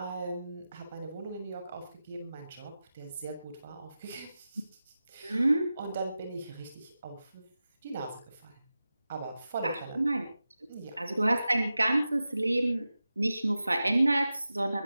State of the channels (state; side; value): inverted; both; correlation -0.94